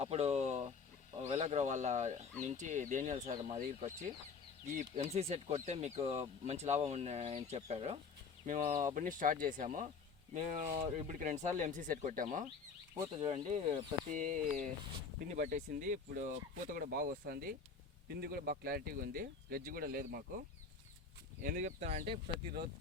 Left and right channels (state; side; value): quieter; right; 5.3 dB